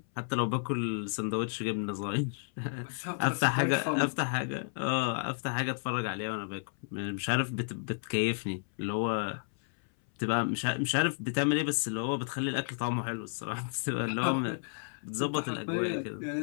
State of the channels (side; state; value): right; silent; 56 dB below the other